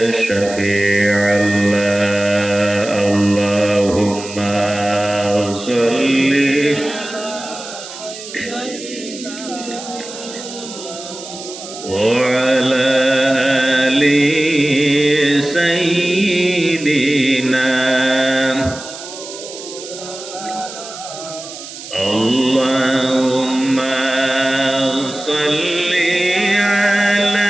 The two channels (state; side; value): noise; right; hiss, 13 dB below the sound